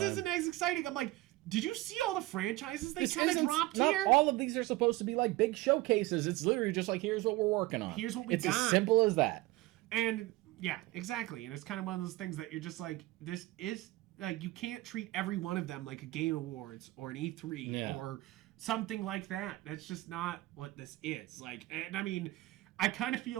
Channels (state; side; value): quieter; left; 19.1 dB